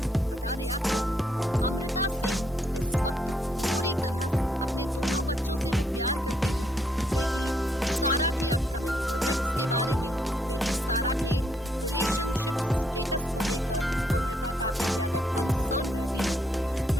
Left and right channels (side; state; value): both; normal; correlation 0.73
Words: बता दें आपको, अमृता सिंह इस वक्त पूरी तरह से अपने दोनों बच्चों से वो प्यार करती है। बेटी सारा के अपकमिंग प्रोजेक्ट्स के बारे में, बेटी सारा के रिलेशनशिप स्टेटस को लेकर अमृता काफी ज्यादा कंसर्न रहती हैं।